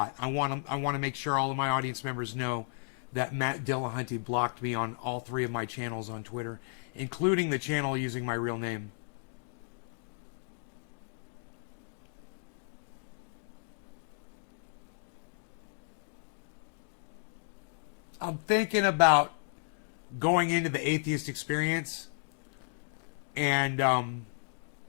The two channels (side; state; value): right; silent; digital silence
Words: I want to make sure all of my audience members know that Matt Dillahunty blocked me on all 3 of my channels on Twitter, including the channel using my real name. I'm thinking about going into the atheist experience and